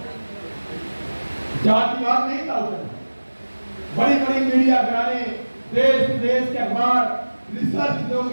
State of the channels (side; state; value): both; inverted; correlation -1.00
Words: जातिवाद नहीं था उत्तर, बड़ी बड़ी मीडिया घराने, देश विदेश के अखबार रिसर्च लोग